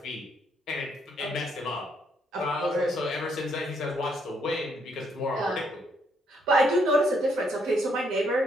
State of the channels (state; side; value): normal; both; correlation 0.72